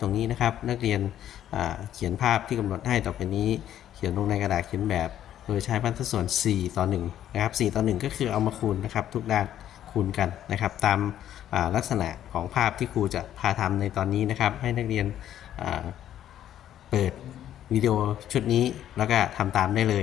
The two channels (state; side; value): quieter; right; 11.2 dB